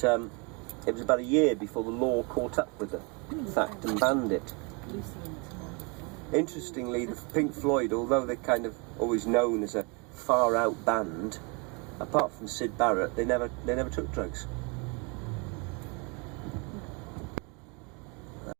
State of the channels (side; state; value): left; quieter; 31.7 dB